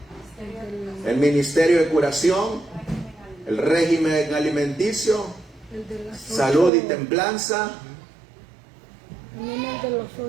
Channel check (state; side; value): drops out; left; at 6.7 s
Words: el ministerio de curación, el régimen alimenticio, salud y templanza. También el de los